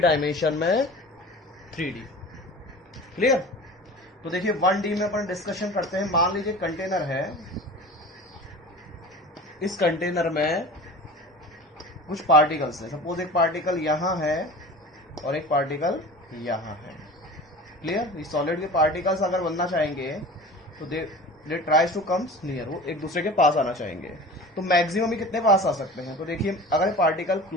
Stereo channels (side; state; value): both; normal; correlation 0.37